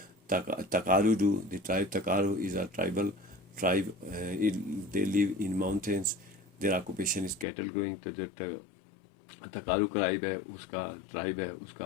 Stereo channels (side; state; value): right; drops out; at 7.5 s